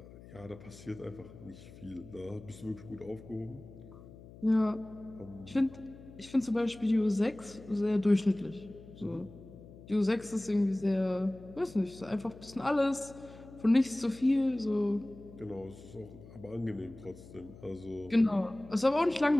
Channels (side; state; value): left; noise; hum, 18 dB below the sound